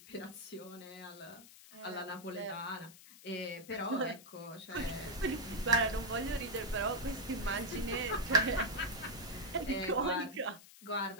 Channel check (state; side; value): noise; left; hiss, 19 dB below the sound